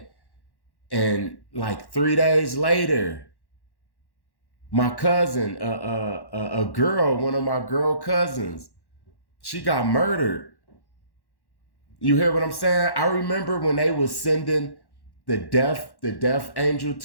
And like 3 days later, my cousin, a girl, one of my girl cousins, she got murdered. You hear what I'm saying? I remember when they was sending the death angel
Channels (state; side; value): late; right; 1.1 ms